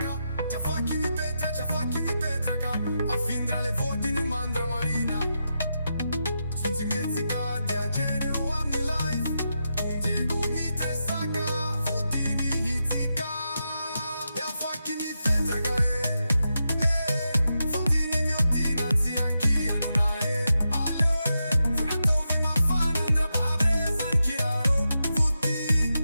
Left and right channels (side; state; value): both; inverted; correlation -0.87